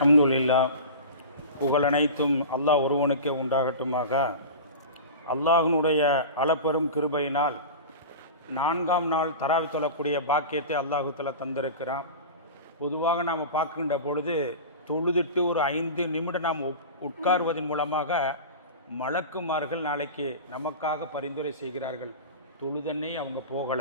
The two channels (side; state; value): both; inverted; correlation -0.30